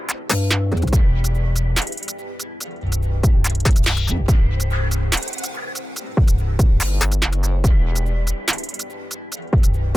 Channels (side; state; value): both; normal; correlation 0.96